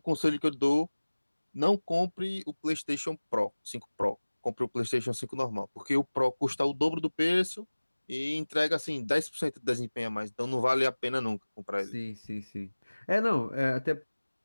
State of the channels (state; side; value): inverted; both; correlation -1.00